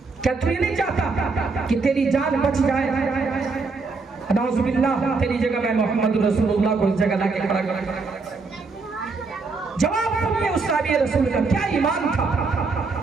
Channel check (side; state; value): left; quieter; 4.2 dB